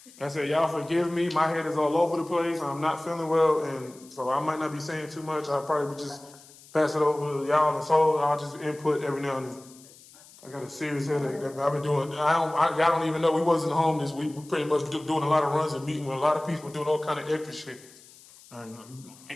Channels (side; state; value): left; noise; hiss, 23 dB below the sound